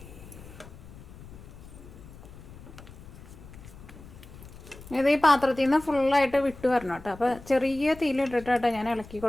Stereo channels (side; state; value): left; noise; rumble, 17 dB below the sound